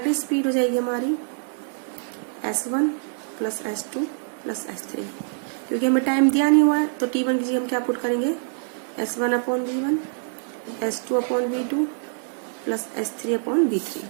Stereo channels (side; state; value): left; silent; digital silence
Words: स्पीड हो जाएगी हमारी S1 plus S2 plus S3, क्योंकि हमें टाइम दिया नहीं हुआ है तो T1 की जगह हम क्या पुट करेंगे, S1 upon V1, S2 upon V2 plus S3 upon V3।